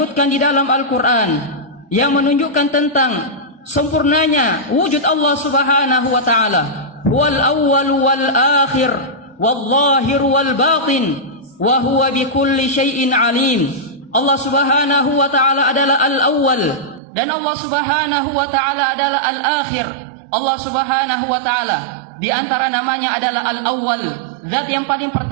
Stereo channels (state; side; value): drops out; left; at 17.0 s